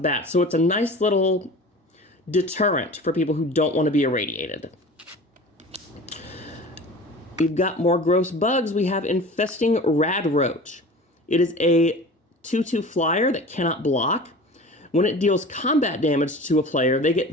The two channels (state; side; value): normal; both; correlation 0.38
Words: So it's a nice little deterrent for people who don't want to be irradiated. We've got more gross bugs. We have Infesting Radroach. It is a 2/2 flyer that cannot block. When it deals combat damage to a player, they